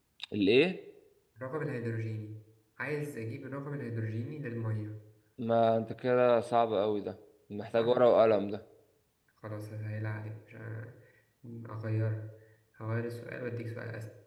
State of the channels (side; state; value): both; identical; correlation 1.00